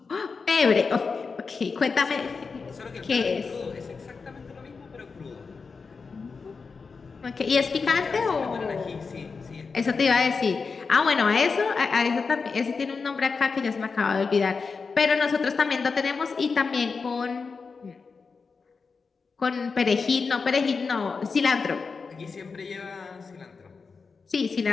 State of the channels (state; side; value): quieter; right; 4.9 dB